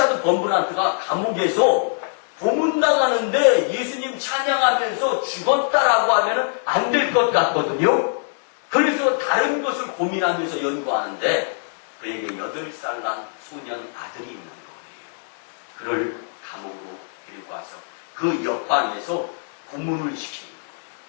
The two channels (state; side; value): silent; right; digital silence